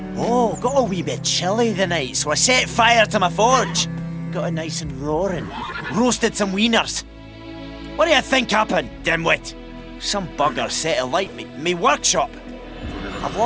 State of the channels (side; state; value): both; identical; correlation 1.00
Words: Oh, got a wee bit chilly the night, so I set fire to my forge. Got it nice and roaring. Roasted some wieners. What do you think happened, dimwit? Some bugger set alight me workshop. I've